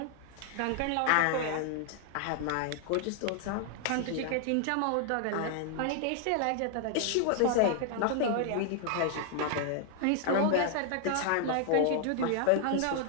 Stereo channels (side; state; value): both; different; correlation 0.00